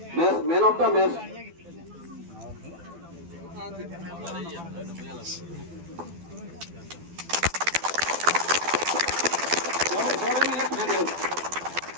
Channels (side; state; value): left; late; 12 ms